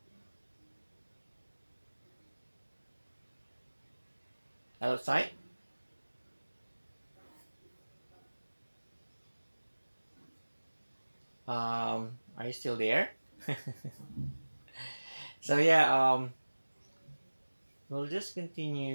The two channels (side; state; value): both; inverted; correlation -1.00